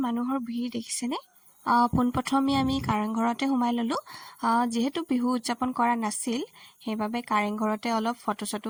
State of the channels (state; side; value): identical; both; correlation 1.00